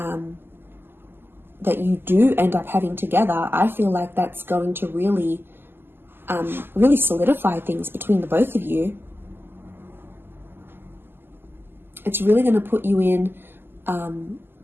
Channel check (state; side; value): late; left; 0.10 ms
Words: you do end up having together, I feel like that's going to really solidify things between the both of you. It's really going to put you in